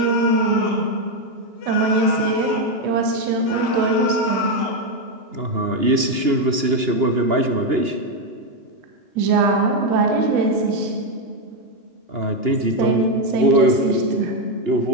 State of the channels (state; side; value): late; left; 2.9 ms